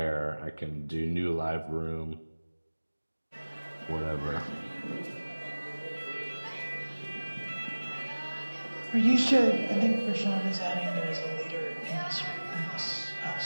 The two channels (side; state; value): both; inverted; correlation -1.00